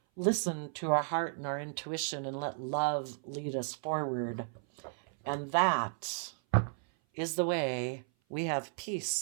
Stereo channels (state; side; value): silent; left; 55 dB below the other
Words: listen to our heart and our intuition and let love lead us forward. And that is the way we have